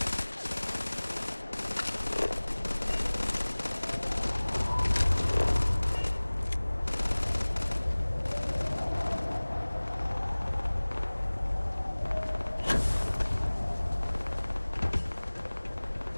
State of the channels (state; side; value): inverted; both; correlation -1.00